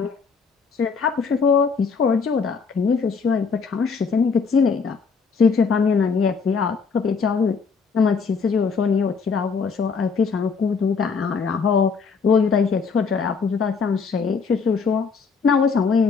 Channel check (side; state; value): right; quieter; 5.3 dB